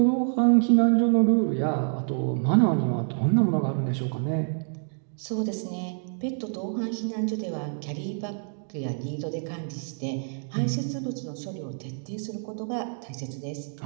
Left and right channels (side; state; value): left; silent; 60 dB below the other